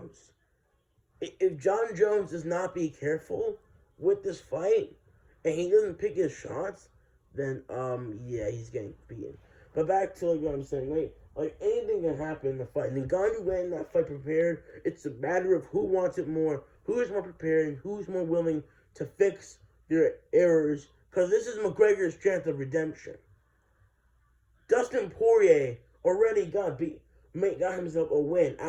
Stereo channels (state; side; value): identical; both; correlation 1.00